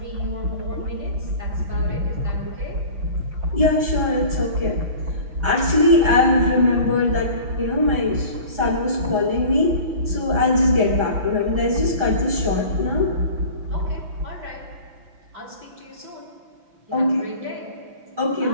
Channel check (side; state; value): left; late; 6.0 ms